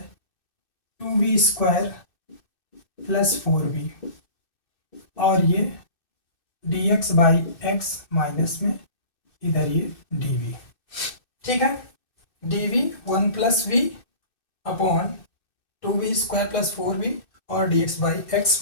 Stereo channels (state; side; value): late; right; 2.6 ms